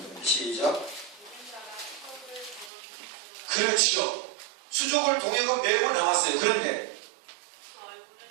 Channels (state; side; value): drops out; left; at 2.7 s